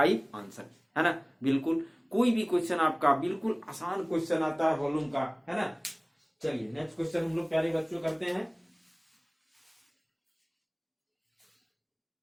आंसर, है ना। बिल्कुल कोई भी क्वेश्चन आपका बिल्कुल आसान क्वेश्चन आता है वॉल्यूम का, है ना। चलिए नेक्स्ट क्वेश्चन हम लोग प्यारे बच्चों करते हैं।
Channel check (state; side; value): identical; both; correlation 1.00